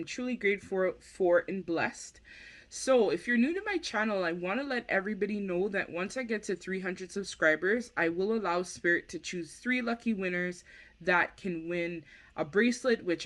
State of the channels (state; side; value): identical; both; correlation 1.00